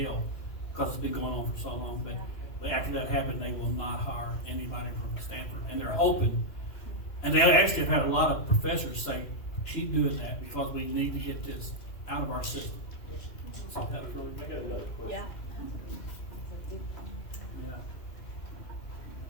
because it's been going on for so long, but after that happened, they will not hire anybody from Stanford. And they're hoping, and they actually have had a lot of professors say, keep doing that because we need to get this out of our system. So that's really I got another question. Yeah. Yeah.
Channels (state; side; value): late; right; 2.6 ms